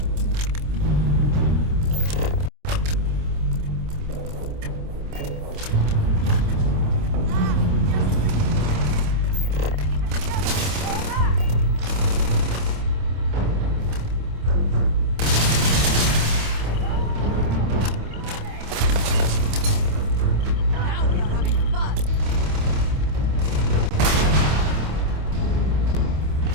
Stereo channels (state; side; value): late; left; 26 ms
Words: Now we are having fun.